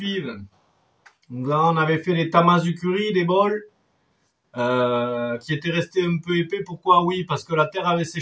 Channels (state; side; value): identical; both; correlation 1.00